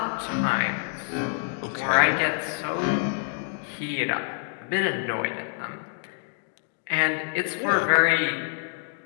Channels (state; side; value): silent; right; 58 dB below the other